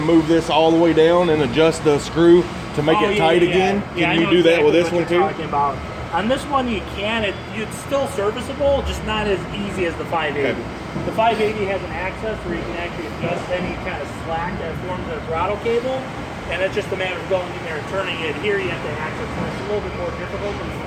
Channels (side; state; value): both; identical; correlation 1.00